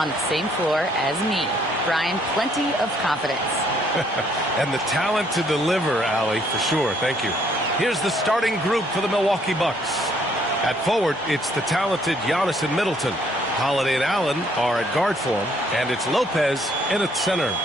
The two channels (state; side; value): normal; both; correlation 0.66